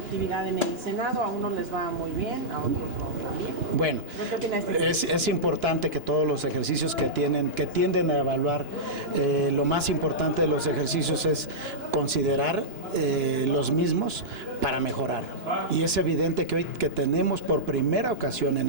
en el Senado. A unos les va muy bien, a otros no tan bien. Bueno, ¿Qué opina de este? es importante que todos los ejercicios que tienden a evaluar, lo más importante de los ejercicios es considerar los mismos para mejorar. Y es evidente que hoy que tenemos por primera ocasión en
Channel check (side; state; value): left; late; 2.9 ms